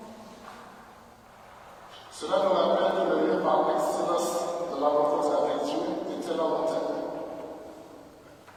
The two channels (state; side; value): identical; both; correlation 1.00